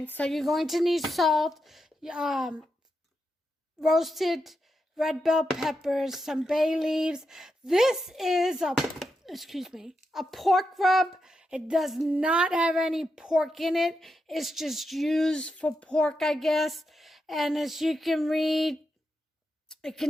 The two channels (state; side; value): normal; both; correlation 0.86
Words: so you're going to need salt, roasted red bell peppers, some bay leaves. This is a pork rub. It does not have any pork in it. It's just used for pork, I guess. And as you can read, it